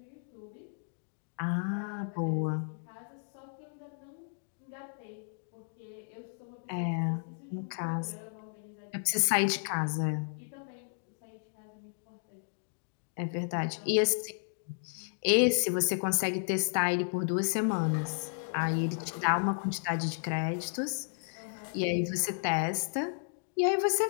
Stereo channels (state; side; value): silent; right; digital silence